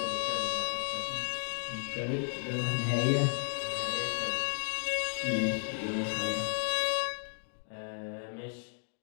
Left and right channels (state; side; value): silent; right; digital silence